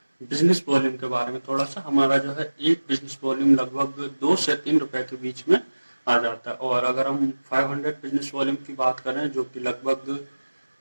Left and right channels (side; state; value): both; inverted; correlation -1.00